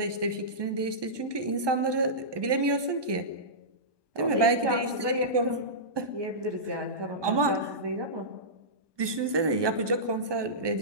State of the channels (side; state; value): left; late; 1.2 ms